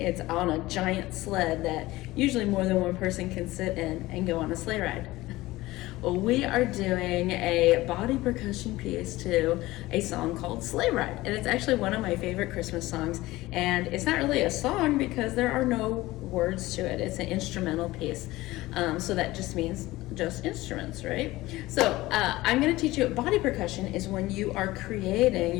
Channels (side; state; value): right; quieter; 18.5 dB